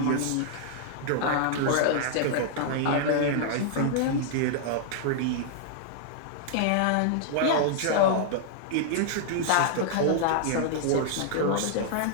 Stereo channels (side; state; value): both; different; correlation -0.01